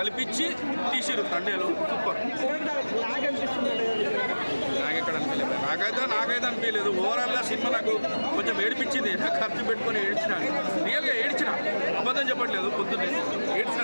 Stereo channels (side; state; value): both; inverted; correlation -1.00